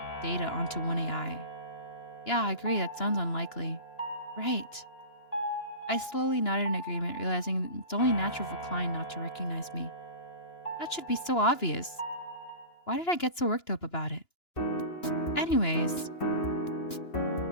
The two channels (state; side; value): late; right; 2.9 ms